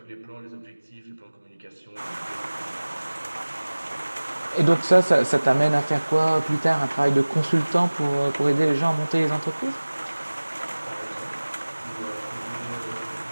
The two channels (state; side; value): inverted; both; correlation -1.00